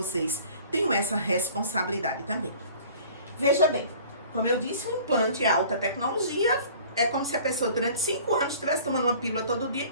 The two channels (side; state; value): both; inverted; correlation -0.48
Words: tenho essa responsabilidade também. Veja bem, como eu disse, o implante é alta tecnologia, é como se a pessoa durante 5 anos estivesse tomando uma pílula todo dia e